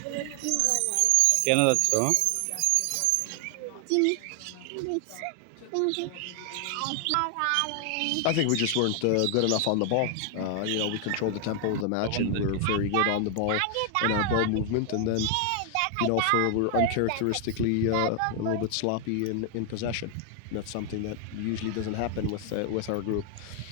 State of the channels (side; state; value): both; different; correlation 0.00